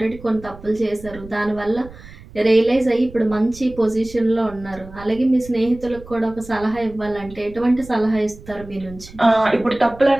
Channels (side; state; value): right; noise; rumble, 18 dB below the sound